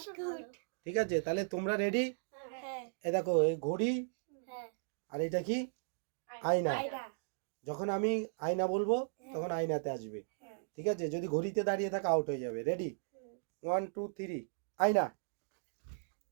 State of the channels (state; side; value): silent; left; digital silence